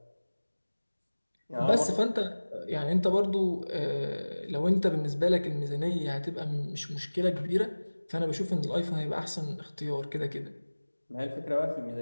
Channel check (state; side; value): inverted; both; correlation -1.00